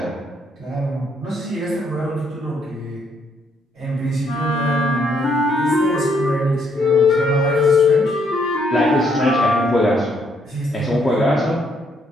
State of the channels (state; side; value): normal; both; correlation 0.71